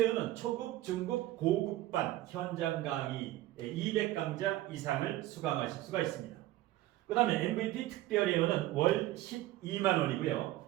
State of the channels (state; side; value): quieter; left; 16.0 dB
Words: 초급, 중급, 고급반 현장 강의 200강좌 이상을 수강하실 수가 있습니다. 그 다음에 MVP 특별회원은 월 12만원이고요.